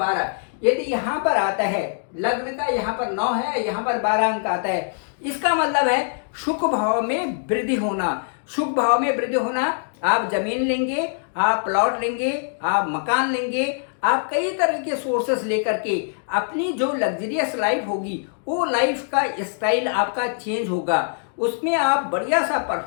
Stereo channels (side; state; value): right; silent; digital silence